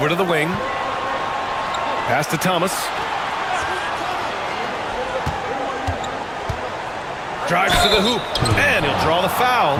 to the wing. Pass to Thomas. Drives to the hoop. And he'll draw the foul.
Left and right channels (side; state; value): both; identical; correlation 1.00